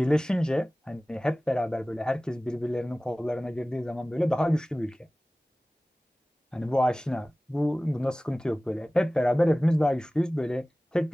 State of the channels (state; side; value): normal; both; correlation 0.98